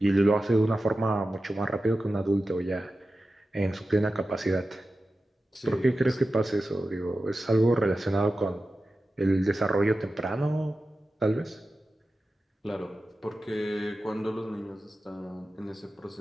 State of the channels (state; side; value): normal; both; correlation 0.93